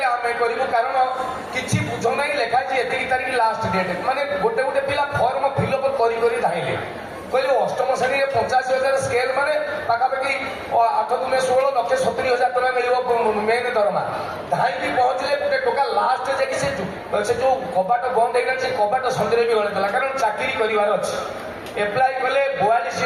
ଆମେ କରିବୁ। କାରଣ କିଛି ବୁଝ ନାହିଁ ଲେଖା ହେଇଛି ଏତିକି ତାରିଖ ଲାଷ୍ଟ ଡେଟ୍। ମାନେ ଗୋଟେ ପିଲା ଫର୍ମ ଫିଲ୍ଅପ୍ କରି ଧାଇଁଲେ କହିଲେ 8ମ ଶ୍ରେଣୀରେ 85,000 ସ୍କେଲ ମାନେ ପାଖାପାଖି 8×16 1,70,000 ଟଙ୍କା ମିଳିବ ମେନ୍ ଦରମା। ଧାଇଁକି ପହଞ୍ଚିଲେ ଗୋଟେ ଟୋକା ଲାଷ୍ଟ ଯାଇକି ସେ ଯୋଉ କବାଟ ବନ୍ଦ ହେଇଗଲା ସେ କବାଟ ସନ୍ଧ୍ୟାରେ ବି ଗଳେଇଦେଲା। କାରଣ ଚାକିରି କରିବାର ଅଛି। ଏପ୍ଲାଏ କଲେ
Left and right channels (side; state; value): both; identical; correlation 1.00